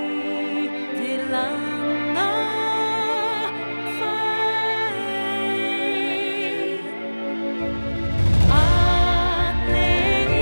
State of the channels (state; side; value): inverted; both; correlation -1.00